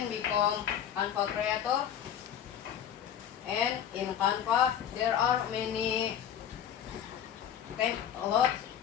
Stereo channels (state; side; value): quieter; right; 9.4 dB